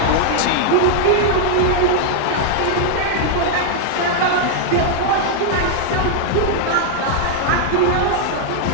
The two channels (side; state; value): both; different; correlation -0.01